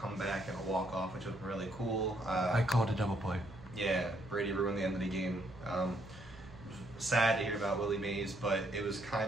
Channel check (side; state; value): right; noise; hum, 19 dB below the sound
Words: and a walk-off, which was really cool. I called a double play. Yeah, Brady ruined the end of the game. Sad to hear about Willie Mays, but it was